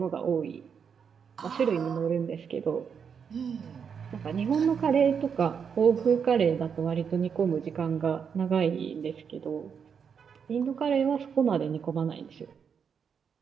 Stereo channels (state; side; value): quieter; left; 6.8 dB